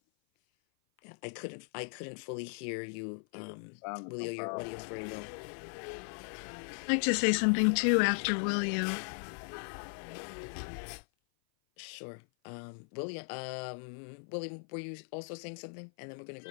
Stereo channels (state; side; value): silent; right; 53 dB below the other